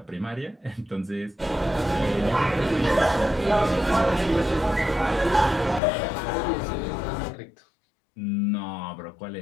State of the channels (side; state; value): right; drops out; at 5.8 s